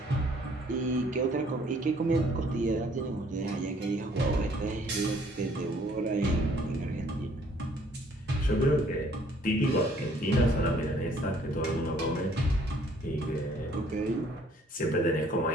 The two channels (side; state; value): both; normal; correlation 0.61